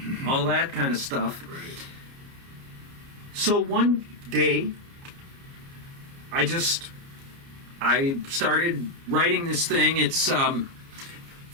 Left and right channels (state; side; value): late; left; 29 ms